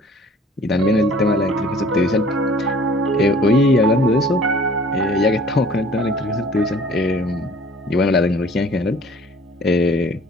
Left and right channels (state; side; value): normal; both; correlation 0.51